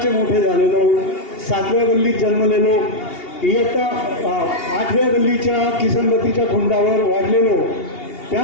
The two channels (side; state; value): right; late; 2.8 ms